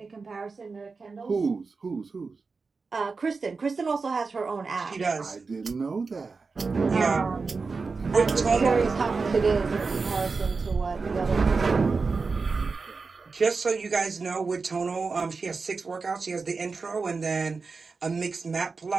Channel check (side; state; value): left; quieter; 4.4 dB